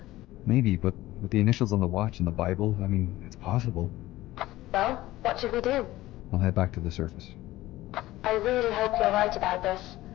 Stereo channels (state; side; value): quieter; right; 16.7 dB